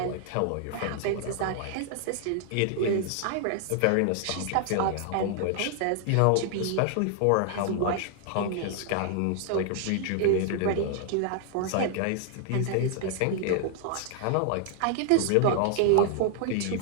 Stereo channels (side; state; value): both; different; correlation 0.00